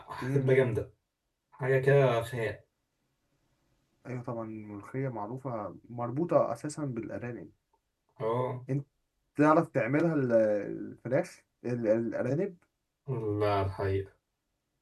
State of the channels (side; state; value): both; identical; correlation 1.00